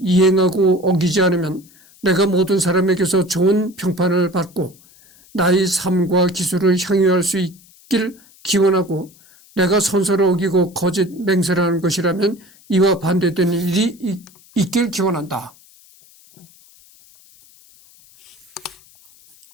이행하고 어기지 않으면 내가 모든 사람에게서 좋은 평판을 받고 나의 삶과 기술을 향유할 수 있길 기원하고, 내가 선서를 어기고 거짓 맹세를 하는 것이라면 이와 반대되는 일이 있길 기원한다.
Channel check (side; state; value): left; noise; hiss, 27 dB below the sound